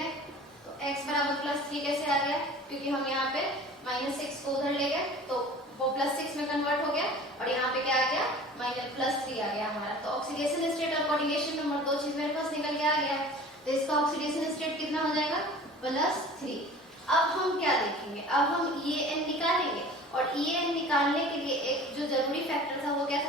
तो x बराबर +3 कैसे आ गया, क्योंकि हम यहाँ पे -6 को उधर ले गए तो वो +6 में कन्वर्ट हो गया और यहाँ पे क्या आ गया +3 आ गया हमारा। तो ऑक्सीडेशन स्टेट और कोऑर्डिनेशन नंबर दो चीज मेरे पास निकल के आ गया। तो इसका ऑक्सीडेशन स्टेट कितना हो जाएगा +3। अब हम क्या देखेंगे, अब हम EAN निकालेंगे और EAN निकालने के लिए एक जो जरूरी फैक्टर था वो क्या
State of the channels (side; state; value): both; normal; correlation 0.43